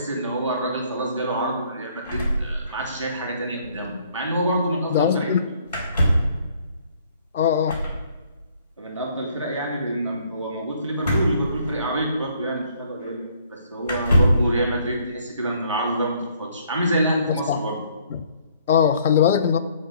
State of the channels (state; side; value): inverted; both; correlation -0.63